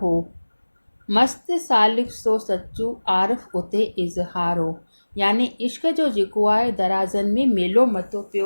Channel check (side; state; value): both; inverted; correlation -1.00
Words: हो, मस्त सालिक सो सचू आरिफ उते इज़हार हो। यानी इश्क जो जेको आहे दराज़नि में मेलो मतो